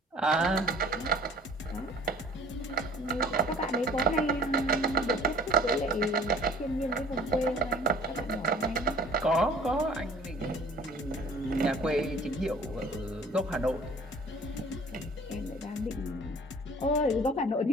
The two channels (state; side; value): normal; both; correlation 0.50